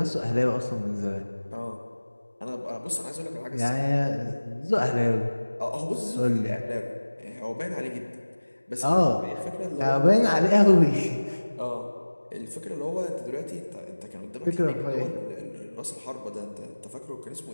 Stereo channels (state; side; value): inverted; both; correlation -1.00